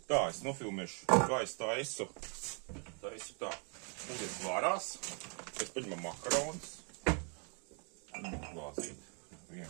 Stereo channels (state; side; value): quieter; left; 38.5 dB